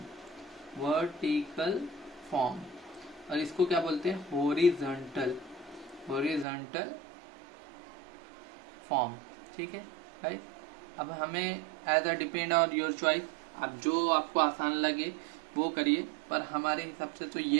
और इसको क्या बोलते हैं हॉरिजॉन्टल फॉर्म, ठीक है राइट। अब हमें as a depend on your choice, अब जो आपको आसान लगे वो करिए, पर हमारे हिसाब से तो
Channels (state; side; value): drops out; left; at 6.5 s